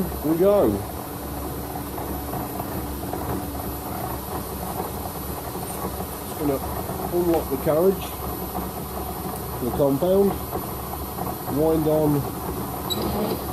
we go. Just going to unlock the carriage, the compound, wind on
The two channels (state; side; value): identical; both; correlation 1.00